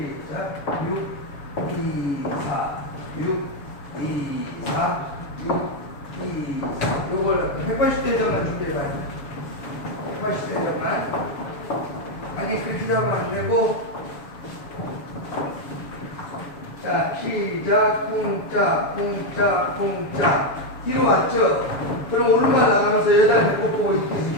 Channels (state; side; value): late; right; 7.0 ms